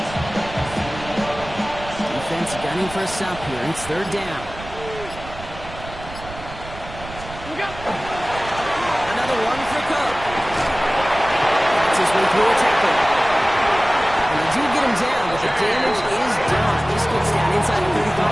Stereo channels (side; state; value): right; noise; rumble, 14 dB below the sound